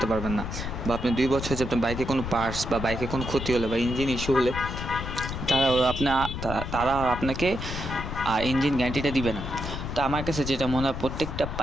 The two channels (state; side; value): noise; left; rumble, 6 dB below the sound